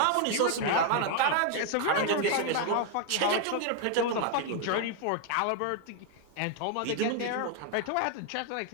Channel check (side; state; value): both; different; correlation 0.00